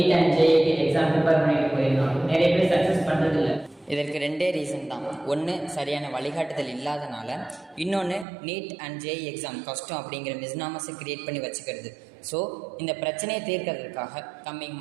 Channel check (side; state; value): left; drops out; at 8.2 s